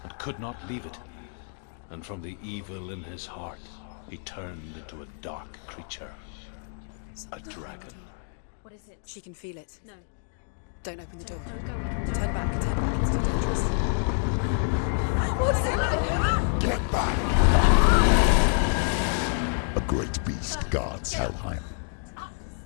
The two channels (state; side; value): silent; right; 60 dB below the other